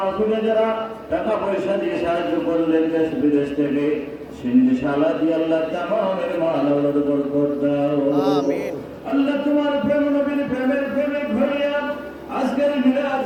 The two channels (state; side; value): identical; both; correlation 1.00